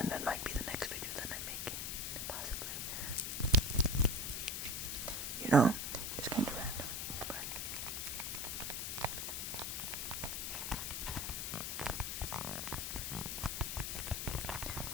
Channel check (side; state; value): left; noise; hiss, 2 dB below the sound